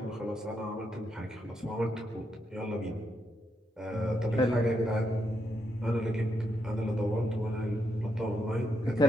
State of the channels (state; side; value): normal; both; correlation 0.80